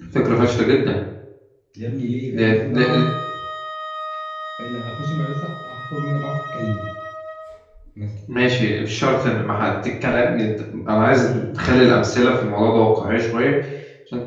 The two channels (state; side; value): identical; both; correlation 1.00